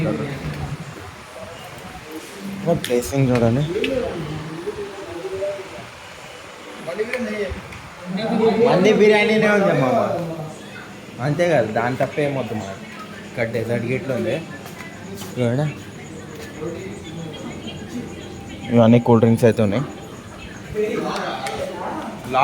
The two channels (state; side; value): identical; both; correlation 1.00